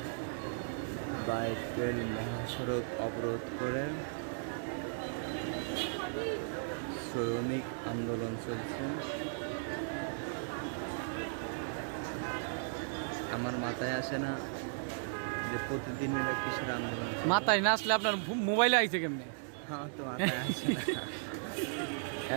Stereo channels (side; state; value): left; silent; digital silence